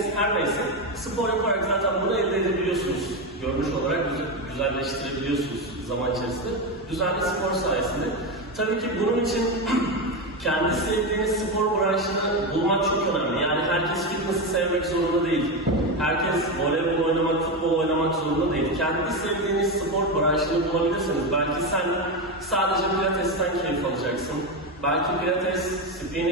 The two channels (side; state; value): both; normal; correlation 0.13